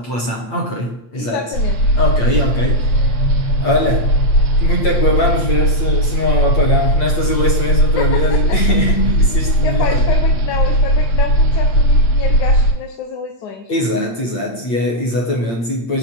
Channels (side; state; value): right; late; 8.7 ms